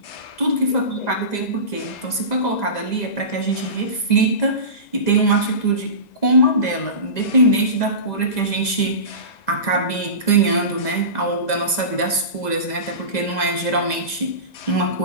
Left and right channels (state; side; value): late; right; 2.0 ms